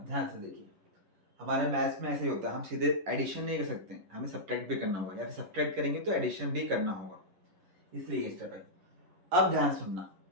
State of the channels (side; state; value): left; late; 11 ms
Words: ध्यान से देखिए, हमारे मैथ्स में ऐसे ही होता है, हम सीधे एडिशन नहीं कर सकते, हमें सब्ट्रैक्ट भी करना होगा, या फिर सब्ट्रैक्ट करेंगे तो एडिशन भी करना होगा, इसलिए ये स्टेप है। अब ध्यान सुनना,